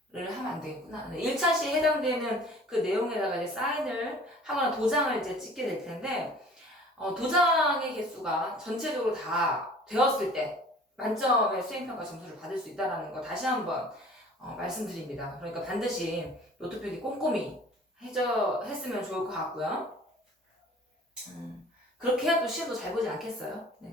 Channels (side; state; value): both; normal; correlation 0.48